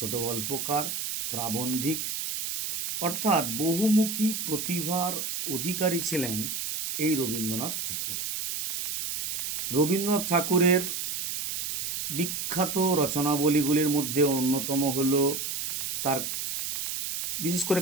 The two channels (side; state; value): right; noise; hiss, 3 dB below the sound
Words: গল্পকার, প্রাবন্ধিক অর্থাৎ বহুমুখী প্রতিভার অধিকারী ছিলেন এই রবীন্দ্রনাথ ঠাকুর। রবীন্দ্রনাথ ঠাকুরের বিখ্যাত রচনাবলীগুলির মধ্যে অন্যতম হল তার বিশেষ করে